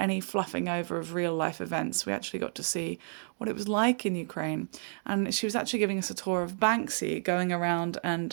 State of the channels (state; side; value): silent; left; digital silence